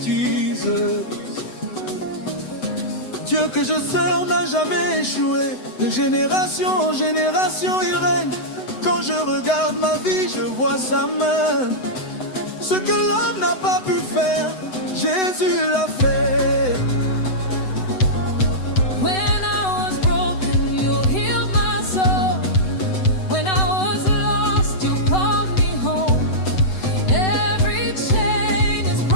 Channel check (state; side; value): late; right; 7.9 ms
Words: Jesus. Dieu que je sers n'a jamais échoué. De génération en génération il règne. Quand je regarde ma vie, je vois sa main. Ce que l'homme n'a pas pu faire, Jésus l'a fait. When I was broken, you healed my soul. When I was lost, you called me home. Every chain is